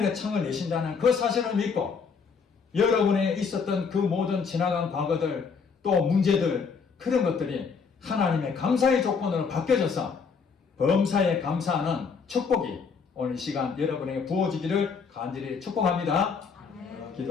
창을 내신다는 그 사실을 믿고, 여러분에 있었던 그 모든 지나간 과거들, 또 문제들, 그런 것들이 하나님의 감사의 조건으로 바뀌어져서 범사에 감사하는 축복이 오늘 시간 여러분에게 부어지기를 간절히 축복합니다.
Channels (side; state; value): right; quieter; 5.6 dB